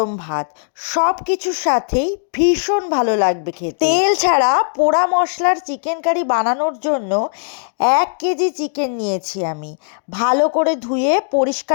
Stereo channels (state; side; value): silent; right; digital silence